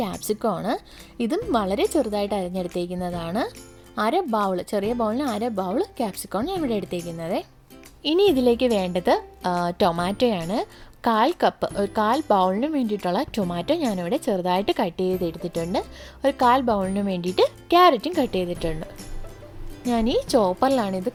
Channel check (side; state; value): both; identical; correlation 1.00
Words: ക്യാപ്സിക്കമാണ്. ഇതും വളരെ ചെറുതായിട്ട് അരിഞ്ഞെടുത്തേക്കുന്നതാണ്. ചെറിയ ബൗളിന് 1/2 ബൗൾ ക്യാപ്സിക്കമാണ് ഞാൻ ഇവിടെ എടുത്തേക്കുന്നത്. ഇനി ഇതിലേക്ക് വേണ്ടത് ടൊമാറ്റോയാണ്. 1/4 കപ്പ്, ഒരു 1/4 ബൗളിന് വേണ്ടിയിട്ടുള്ള ടൊമാറ്റോ ഞാനിവിടെ ചെറുതായിട്ട് കട്ട് ചെയ്തെടുത്തിട്ടുണ്ട്. ഒരു 1/4 ബൗളിന് വേണ്ടിയിട്ട് ക്യാരറ്റും കട്ട് ചെയ്തിട്ടുണ്ട്. ഞാൻ ഈ ചോപ്പറിലാണ് ഇത്